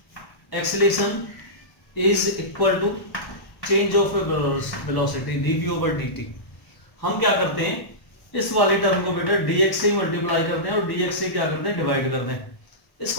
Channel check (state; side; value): late; right; 1.1 ms